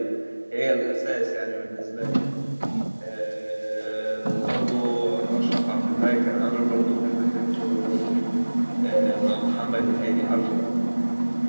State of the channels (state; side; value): inverted; both; correlation -1.00